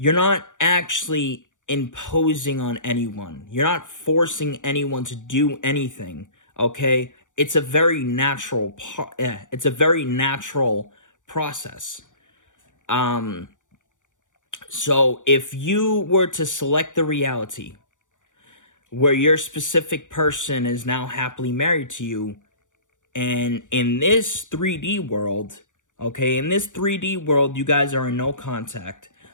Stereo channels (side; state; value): right; late; 0.86 ms